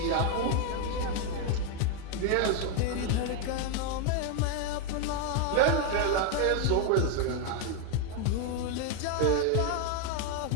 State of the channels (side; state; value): both; different; correlation 0.01